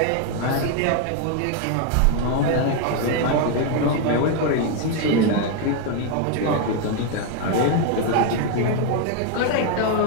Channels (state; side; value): different; both; correlation 0.01